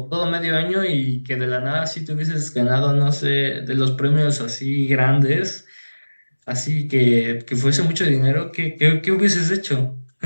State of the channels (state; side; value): inverted; both; correlation -1.00